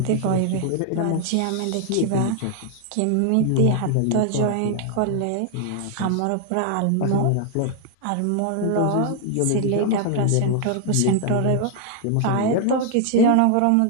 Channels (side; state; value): both; different; correlation 0.00